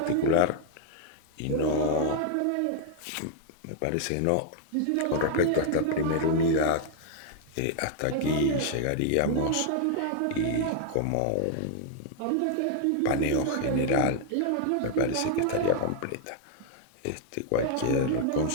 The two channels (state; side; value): different; both; correlation 0.00